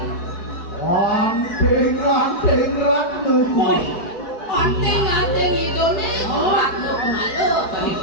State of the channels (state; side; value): late; right; 4.6 ms